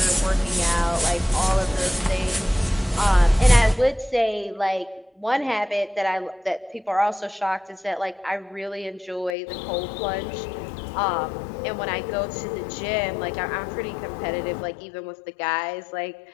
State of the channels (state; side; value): drops out; right; at 9.3 s